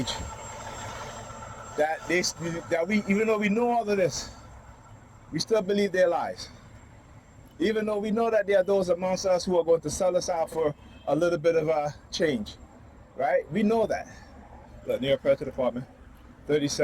that we, even though we know all of this, we still believe their lies. Even though we know that there are those amongst us who are going to sell us out for a little bit of a change, right? We know that. Look, New York Police Department,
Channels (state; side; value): identical; both; correlation 1.00